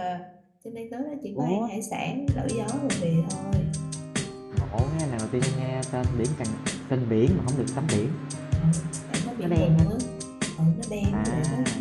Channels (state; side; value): identical; both; correlation 1.00